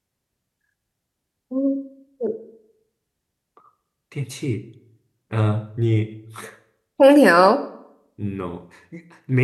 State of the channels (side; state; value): both; identical; correlation 1.00